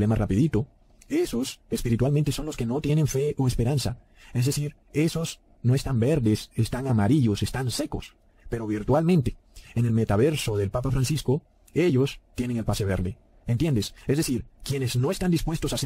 rapidito, esos espiritualmente son los que no tienen fe o esperanza. Es decir, esos no están verdes, están amarillos, están secos. Pero virtualmente, en el metaverso del Papa Francisco, ellos tienen el pase verde. ¿Entiendes? Es decir, quienes no están dispuestos a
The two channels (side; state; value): both; identical; correlation 1.00